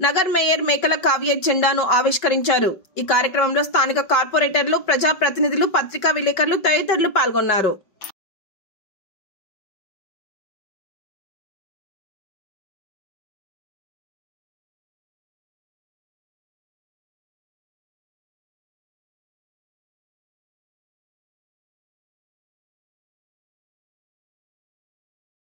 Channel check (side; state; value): right; late; 5.3 ms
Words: నగర్ మేయర్ మేకల కావ్య జెండాను ఆవిష్కరించారు। ఈ కార్యక్రమంలో స్థానిక కార్పొరేటర్లు, ప్రజా ప్రతినిధులు, పత్రికా విలేకరులు తదితరులు పాల్గొన్నారు।